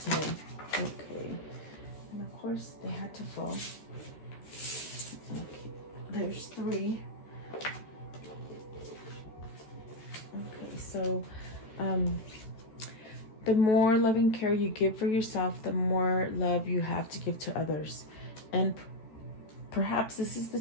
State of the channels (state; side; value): late; right; 13 ms